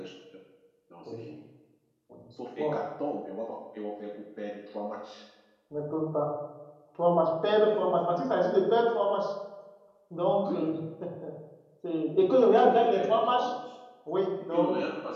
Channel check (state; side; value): identical; both; correlation 1.00